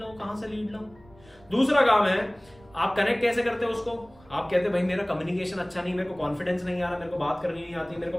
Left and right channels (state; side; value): noise; right; rumble, 26 dB below the sound